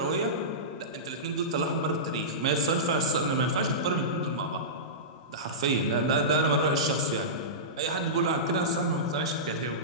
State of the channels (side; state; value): both; normal; correlation -0.18